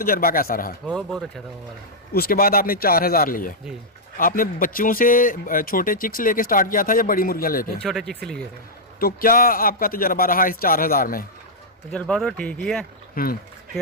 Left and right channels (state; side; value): normal; both; correlation -0.08